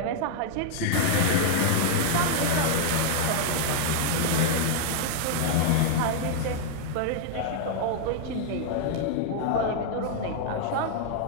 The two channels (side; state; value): both; different; correlation 0.00